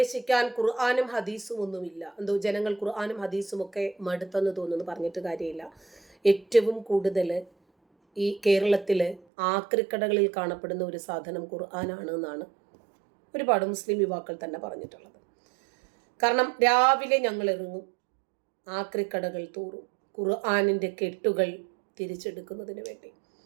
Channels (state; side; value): drops out; left; at 9.2 s